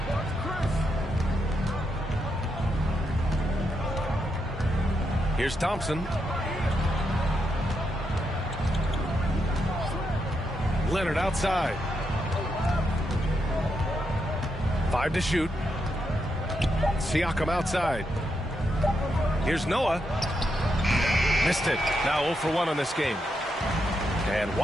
Here's Thompson. Leonard outside. 5 to shoot. Siakam outside. Here's Noah. Missed it. Now 0 for 1 on this game. And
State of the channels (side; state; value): both; normal; correlation 0.82